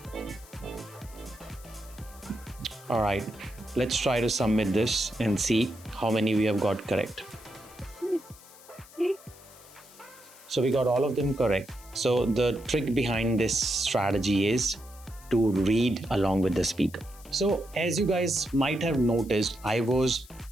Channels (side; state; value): left; noise; hiss, 22 dB below the sound